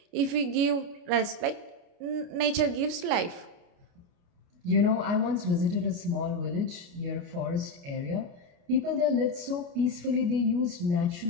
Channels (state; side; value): late; left; 29 ms